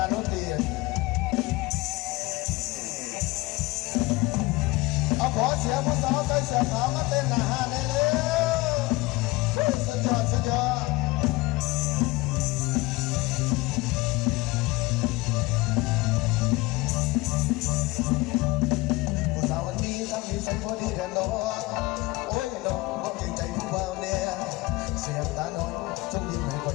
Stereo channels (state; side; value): quieter; right; 21.4 dB